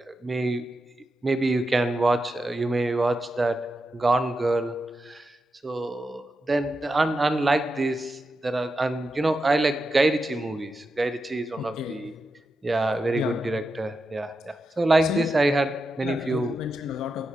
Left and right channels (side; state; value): both; normal; correlation 0.88